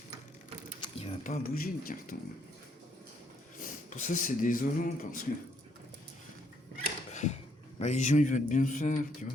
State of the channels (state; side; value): normal; both; correlation 0.71